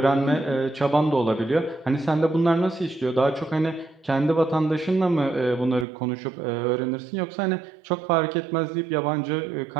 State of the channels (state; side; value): drops out; left; at 5.9 s